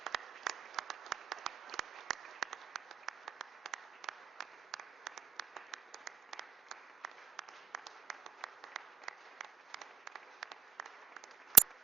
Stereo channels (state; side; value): quieter; left; 7.3 dB